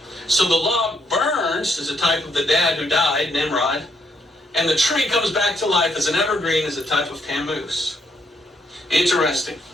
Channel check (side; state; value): both; normal; correlation 0.74